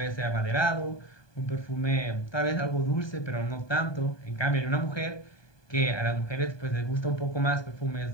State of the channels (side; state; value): right; late; 1.2 ms